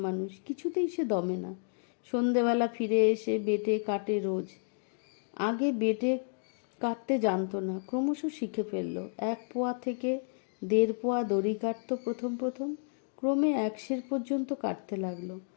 মানুষ, কিছুতেই সে দমে না। সন্ধেবেলা ফিরে এসে বেটে কাটে রোজ। আগে বেটে কাটতে জানতো না, ক্রমশ শিখে ফেলল। 1 পোয়া থেকে 1.5 পোয়া দড়ি কাটত প্রথম। ক্রমে 1 সের পর্যন্ত কাটতে লাগলো।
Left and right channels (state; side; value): silent; right; digital silence